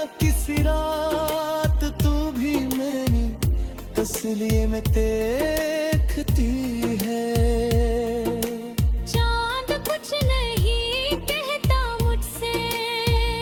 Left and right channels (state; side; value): identical; both; correlation 1.00